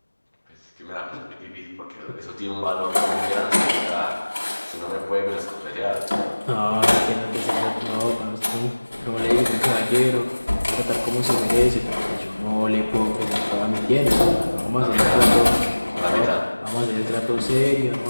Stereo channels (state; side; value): inverted; both; correlation -1.00